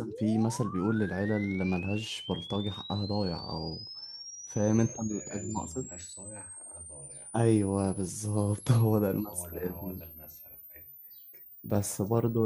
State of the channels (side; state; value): both; identical; correlation 1.00